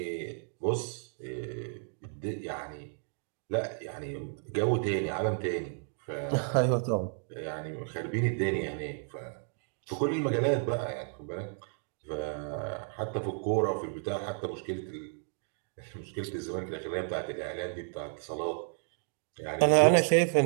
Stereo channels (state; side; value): silent; left; 56 dB below the other